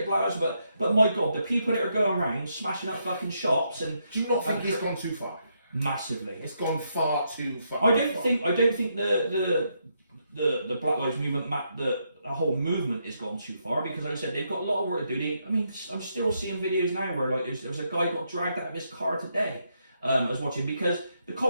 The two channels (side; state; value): both; inverted; correlation -0.79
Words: black lives, but my God, the people that are going around smashing up fucking shops and do you not think it's gone too far? Massively. It's gone far too far. I don't think the Black Lives Movement, the whole movement has gone too far because, like I said, they've got a lot of work to do. I'm still seeing videos now where like there was a guy got dragged out of his car today. I was watching because the